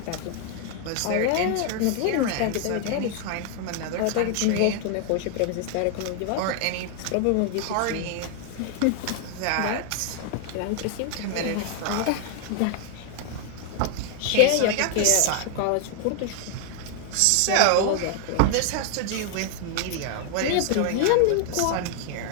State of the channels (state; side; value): different; both; correlation 0.00